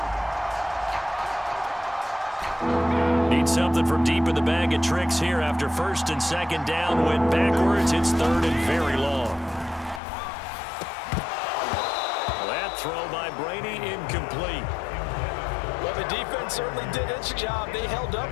Need something from deep in the bag of tricks here after 1st and 2nd down. Went backwards. It's 3rd and very long. That throw by Brady incomplete. Well, the defense certainly did its job. They held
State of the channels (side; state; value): right; drops out; at 10.0 s